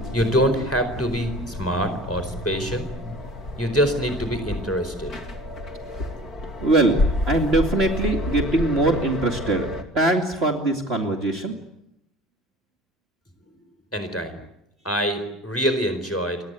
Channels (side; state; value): both; normal; correlation 0.43